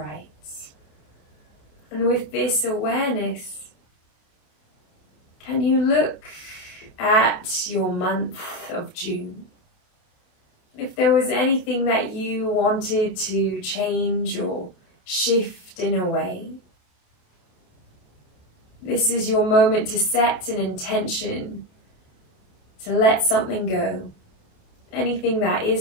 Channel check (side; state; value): right; late; 28 ms